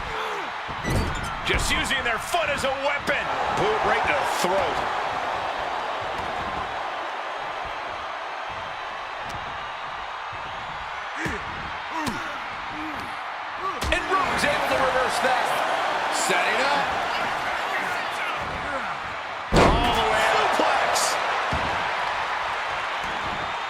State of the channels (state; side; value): identical; both; correlation 1.00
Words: Just using their foot as a weapon. Boot right to the throat. And Rome's able to reverse that. Setting up. All the way to Plex.